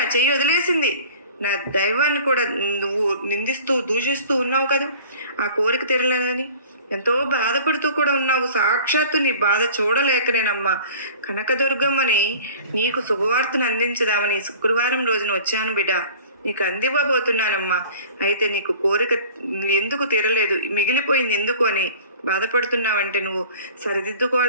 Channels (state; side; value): inverted; both; correlation -0.44